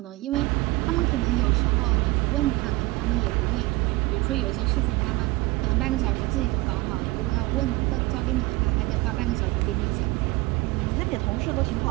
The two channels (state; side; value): quieter; left; 21.2 dB